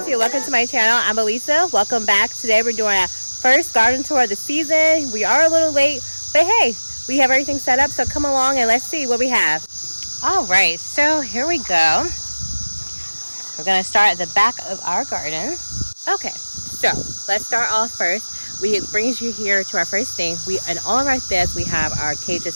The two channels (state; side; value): inverted; both; correlation -1.00